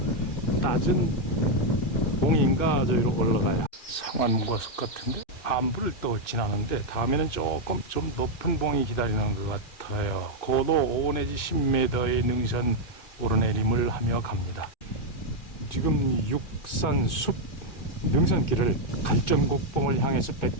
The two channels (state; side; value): late; right; 2.3 ms